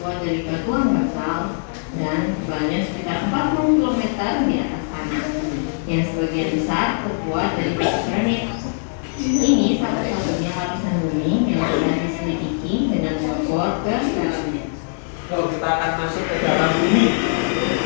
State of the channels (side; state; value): right; silent; 63 dB below the other